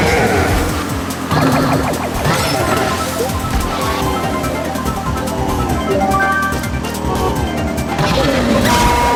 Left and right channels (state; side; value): identical; both; correlation 1.00